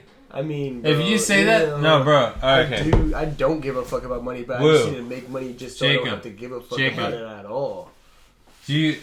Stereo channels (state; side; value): identical; both; correlation 1.00